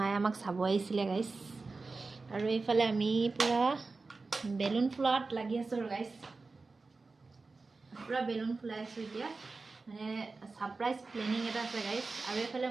আমাক চাব আহিছিলে গাইস আৰু এইফালে আমি পুৰা বেলুন ফুলাত লাগি আছো গাইস পুৰা বেলুন ফুলাই আছো এতিয়া মানে সাৰপ্ৰাইজ প্ল্যানিং এটা আছে গাইস আৰু এইফালে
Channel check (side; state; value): left; quieter; 3.9 dB